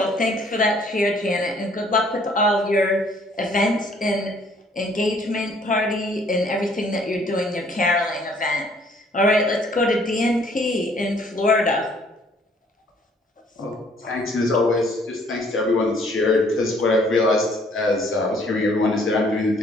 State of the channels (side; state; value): both; normal; correlation 0.61